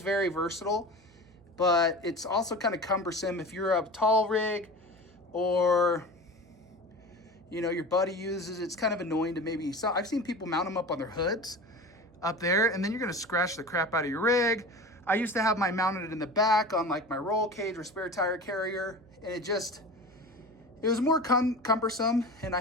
very versatile. But it's also kind of cumbersome if you're a tall rig or, you know, your buddy uses. It's kind of annoying to maybe, so I've seen people mount them up on their hoods up there, and then you're gonna scratch the crap out of your rig. I used to have mine mounted in the back on like my roll cage or spare tire carrier, and it was more cumbersome, and I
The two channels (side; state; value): right; noise; hum, 28 dB below the sound